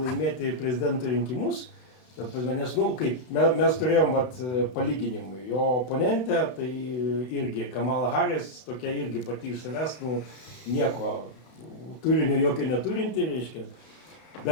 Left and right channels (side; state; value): right; late; 32 ms